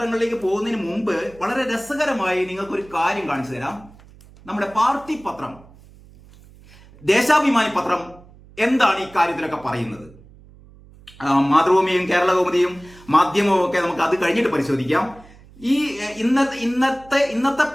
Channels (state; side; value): noise; right; hum, 23 dB below the sound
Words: പോകുന്നതിന് മുമ്പ് വളരെ രസകരമായി നിങ്ങൾക്കൊരു കാര്യം കാണിച്ചു തരാം. നമ്മുടെ പാർട്ടി പത്രം ദേശാഭിമാനി പത്രം എന്താണ് ഈ കാര്യത്തിലൊക്കെ പറയുന്നത്? മാതൃഭൂമിയും കേരള കൗമുദിയും മാധ്യമവും ഒക്കെ നമുക്ക് അത് കഴിഞ്ഞിട്ട് പരിശോധിക്കാം. ഈ ഇന്നത്തെ